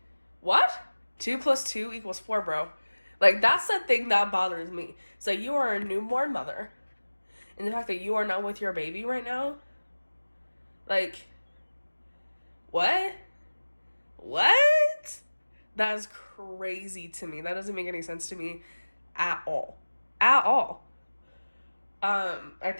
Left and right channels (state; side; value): inverted; both; correlation -1.00